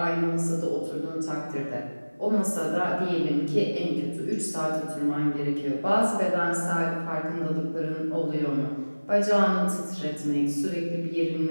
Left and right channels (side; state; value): both; inverted; correlation -1.00